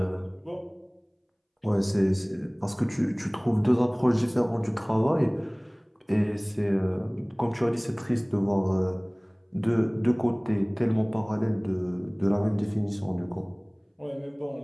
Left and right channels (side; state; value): both; identical; correlation 1.00